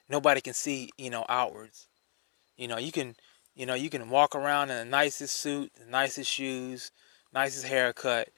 Nobody can see, outwards. You can walk around in the nicest suit, the nicest shoes, nicest haircut.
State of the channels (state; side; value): silent; right; digital silence